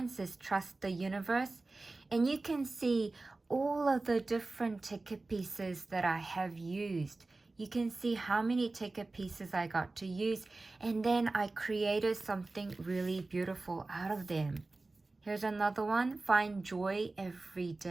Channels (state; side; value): quieter; left; 3.3 dB